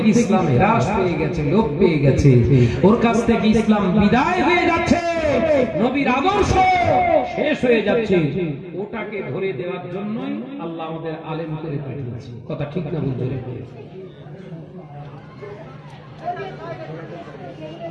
ইসলাম হ্রাস পেয়ে গেছে, লোপ পেয়ে গেছে, ওর কাছ থেকে ইসলাম বিদায় হয়ে যাচ্ছে, নবীর আদর্শ শেষ হয়ে যাচ্ছে, ওটাকে ধরে দেওয়ার জন্যই আল্লাহ আমাদের আলেম করে পাঠিয়েছে। কথা ঠিক না বুঝতে?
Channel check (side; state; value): both; identical; correlation 1.00